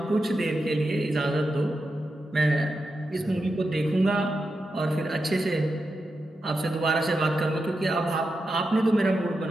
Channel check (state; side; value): normal; both; correlation 0.88